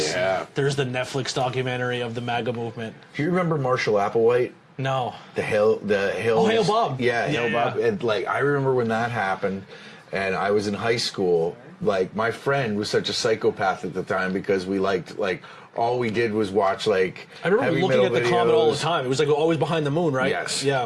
Yeah. There's the Netflix documentary of the MAGA movement. Do you remember Marshall Applewhite? No. The Hill. Oh, Hail Bob. Yeah, Yeah, Hail Bob. yeah. And like I remember when that happened, and I was in high school. Like, my friend was such a psychopath at the time because we liked, like, all we did was watch, like, I remember heavy looking metal at the Comet all the videos. time. It was like always behind the moon, right? Yes.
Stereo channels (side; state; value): both; identical; correlation 1.00